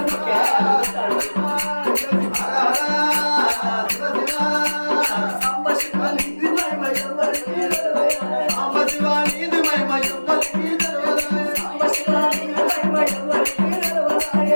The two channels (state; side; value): inverted; both; correlation -1.00